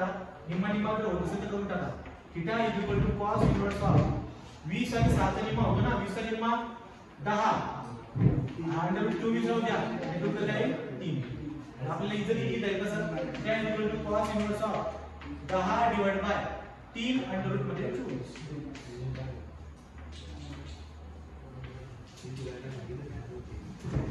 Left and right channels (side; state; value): both; identical; correlation 1.00